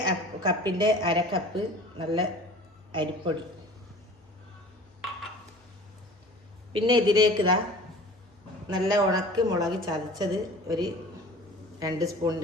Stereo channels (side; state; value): both; normal; correlation 0.43